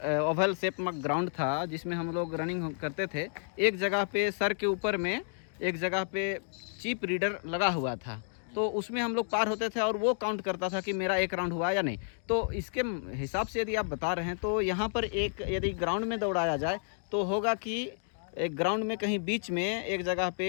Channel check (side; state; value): right; silent; digital silence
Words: ओवल शेप में ग्राउंड था, जिसमें हम लोग रनिंग करते थे। एक जगह पे सर के ऊपर में एक जगह पे चिप रीडर लगा हुआ था, तो उसमें हम लोग पार होते थे और वो काउंट करता था कि मेरा एक राउंड हुआ या नहीं। तो इसके हिसाब से यदि आप बता रहे हैं तो यहाँ पर एक यदि ग्राउंड में दौड़ाया जाए तो होगा कि एक ग्राउंड में कहीं बीच में एक जगह